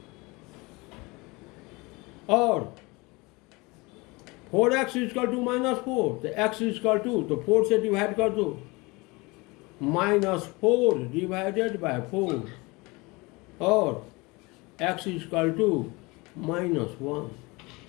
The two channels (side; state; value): right; quieter; 24.9 dB